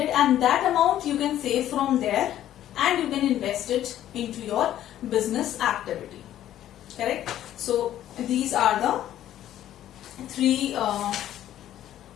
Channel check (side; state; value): right; quieter; 12.2 dB